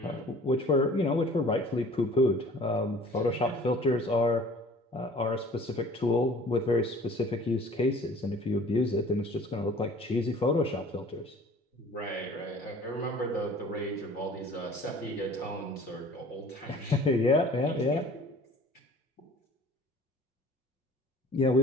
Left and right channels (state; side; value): normal; both; correlation 0.48